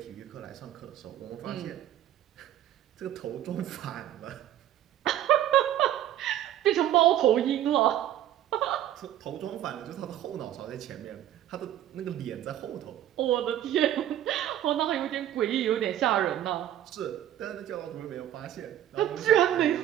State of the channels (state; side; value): quieter; left; 11.9 dB